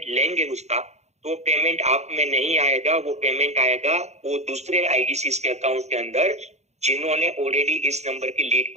लेंगे उसका, तो पेमेंट आप में नहीं आएगा, वो पेमेंट आएगा वो दूसरे आईडीसीज के अकाउंट के अंदर जिन्होंने ऑलरेडी इस नंबर की लीड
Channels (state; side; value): late; left; 0.32 ms